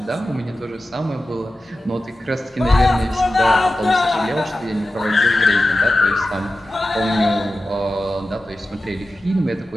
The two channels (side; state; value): both; normal; correlation 0.93